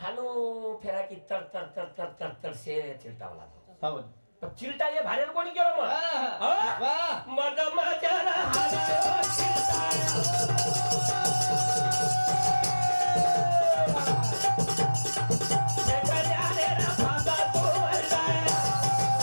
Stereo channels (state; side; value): inverted; both; correlation -1.00